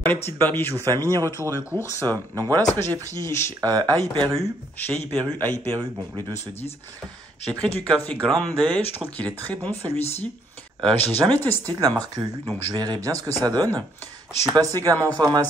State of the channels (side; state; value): both; normal; correlation 0.68